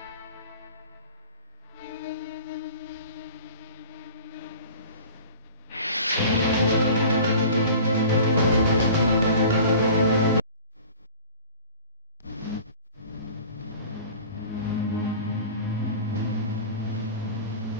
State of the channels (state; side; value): inverted; both; correlation -0.42